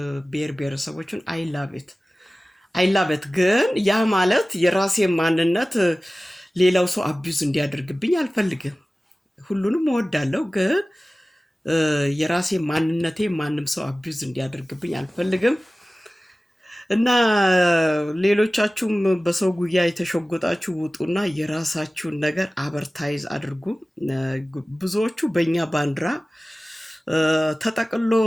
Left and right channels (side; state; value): both; normal; correlation 0.97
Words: ብሔር ብሔረሰቦችን አይላበት ግን ያ ማለት የራሴ ማንነት ሌላው ሰው አቢዩዝ እንዲያደርግብኝ አልፈልግም። ሁሉንም እወዳለሁ፣ ግን የራሴ ማንነቴ ማንም ሰው አቢዩዝ እንዲያደርግብኝ አልፈልግም። እና ሌሎቻችሁም በሰው ጉያ የተሸጎጣችሁ ውጡና የራሳችሁን ነገር አበርታይዝ አድርጉ። ብዙዎቹ በእኛ ባንዲራ ተጠቅሎ